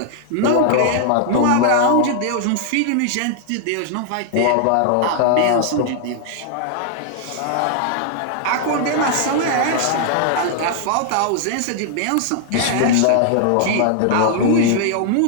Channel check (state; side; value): different; both; correlation 0.00